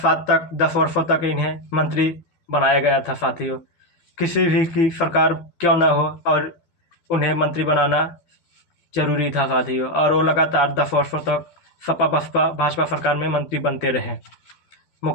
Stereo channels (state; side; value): late; right; 12 ms